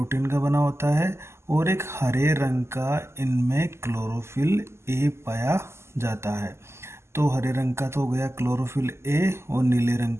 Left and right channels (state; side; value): late; left; 0.13 ms